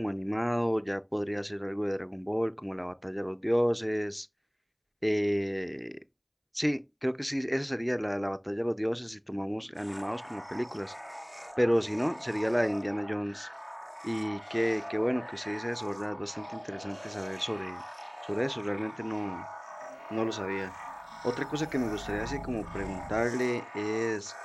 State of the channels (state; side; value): identical; both; correlation 1.00